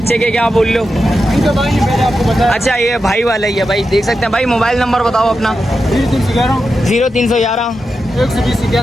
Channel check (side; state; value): both; normal; correlation 0.89